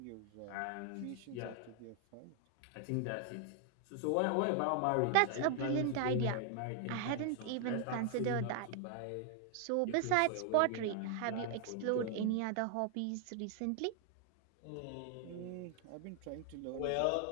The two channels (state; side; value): different; both; correlation 0.00